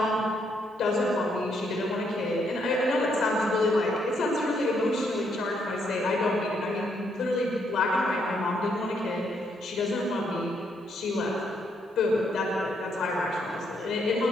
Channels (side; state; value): both; normal; correlation 0.74